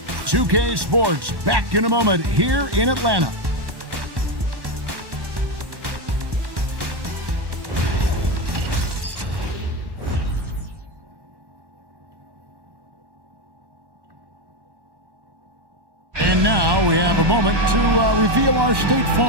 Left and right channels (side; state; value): left; late; 1.1 ms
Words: 2K Sports back in a moment here in Atlanta. And now we have a moment to reveal our State